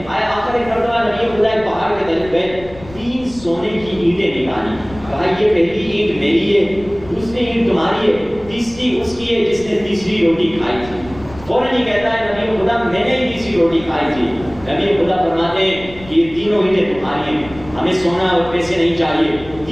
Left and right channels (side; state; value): left; noise; rumble, 18 dB below the sound